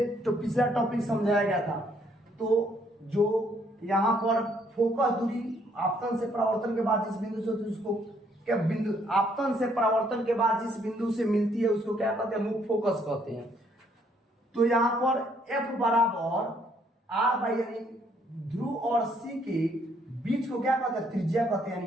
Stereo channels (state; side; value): normal; both; correlation 0.68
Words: टॉपिक समझाया गया था। तो जो यहाँ पर फोकस दूरी आपतन से परावर्तन के बाद जिस बिंदु से, उसको क्या बिंदु, आपतन से परावर्तन के बाद जिस बिंदु से मिलती है उसको क्या कहते हैं, मुख्य फोकस कहते हैं। तो यहाँ पर F बराबर R/, यानी ध्रुव और C के बीच को क्या कहते हैं, त्रिज्या कहते हैं।